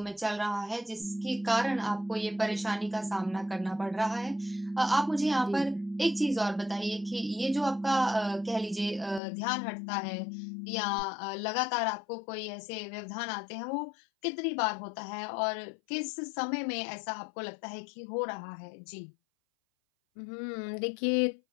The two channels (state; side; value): drops out; right; at 9.2 s